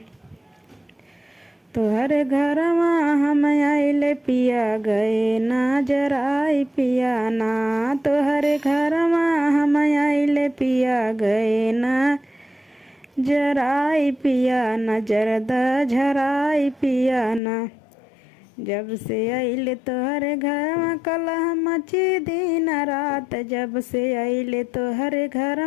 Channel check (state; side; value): drops out; right; at 17.4 s